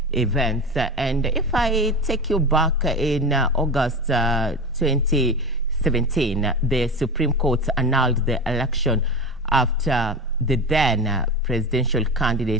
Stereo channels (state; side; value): normal; both; correlation 0.26